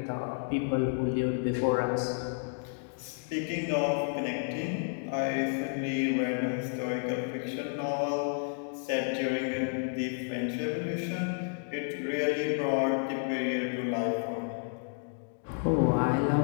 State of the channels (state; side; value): silent; right; 57 dB below the other